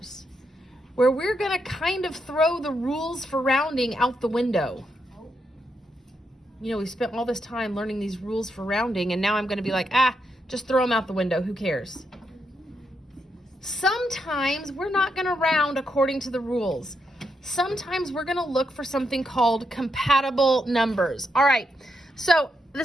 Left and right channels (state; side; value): normal; both; correlation 0.81